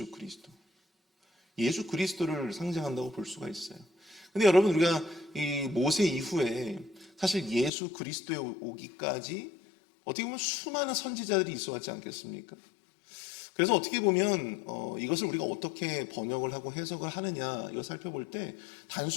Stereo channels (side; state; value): right; drops out; at 7.7 s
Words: 그리스도. 예수 그리스도를 상징한다고 볼 수가 있어요. 근데 여러분, 우리가 이 모세 이후에 사실 예수 그리스도에 오기까지 어떻게 보면 수많은 선지자들이 있어 왔지 않겠습니까? 그래서 어떻게 보면 이것을 우리가 어떻게 번역을 하고 해석을 하느냐 이거 살펴볼 때